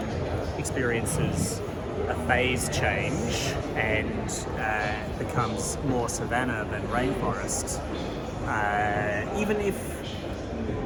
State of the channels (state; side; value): identical; both; correlation 1.00